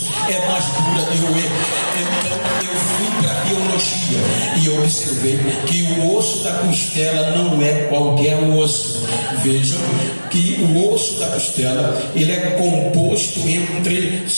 é mais dura de roer. Então eu fui para a biologia e observei que o osso da costela não é qualquer osso. Vejam que o osso da costela, ele é composto entre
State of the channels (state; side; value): inverted; both; correlation -1.00